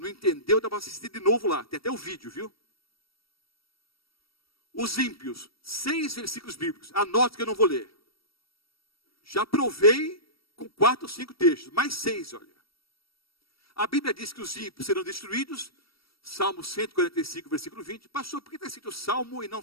entendeu, dá para assistir de novo lá. Tem até o vídeo, viu? Os ímpios. 6 versículos bíblicos. Anote que eu não vou ler. Já provei com 4 ou 5 textos. Mais 6, olha. A Bíblia diz que os ímpios serão destruídos. Salmo 145, versículo 20. Pastor, por que está escrito Salmo e não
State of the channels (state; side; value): late; right; 0.75 ms